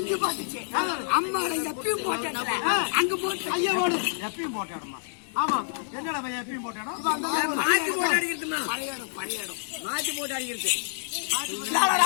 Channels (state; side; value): silent; right; digital silence